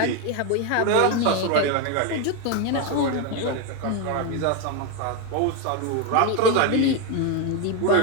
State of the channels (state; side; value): different; both; correlation 0.02